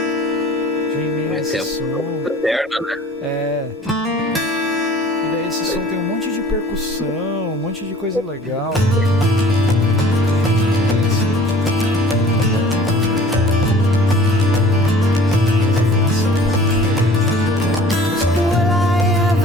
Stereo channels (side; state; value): both; normal; correlation 0.48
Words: Esse é a eterna, né? E daí esse som tem um monte de percussão, um monte de coisa legal.